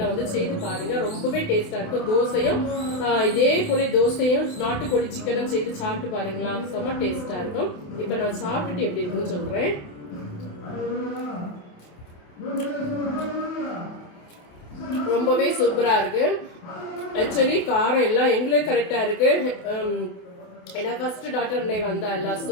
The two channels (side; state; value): right; late; 27 ms